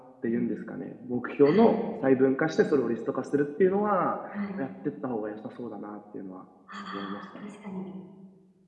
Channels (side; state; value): both; identical; correlation 1.00